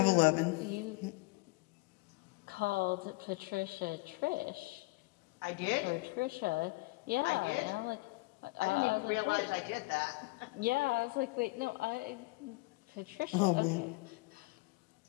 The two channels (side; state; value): right; quieter; 24.0 dB